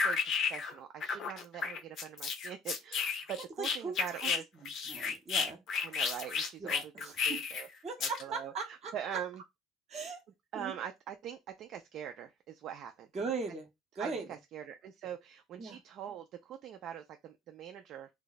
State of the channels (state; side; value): normal; both; correlation 0.50